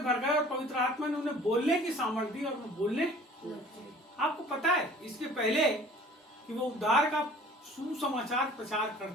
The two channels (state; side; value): normal; both; correlation 0.49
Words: गए, और पवित्र आत्मा ने उन्हें बोलने की सामर्थ्य दी, और उन्हें बोलने। आपको पता है इसके पहले कि वो उद्धार का सुसमाचार प्रचार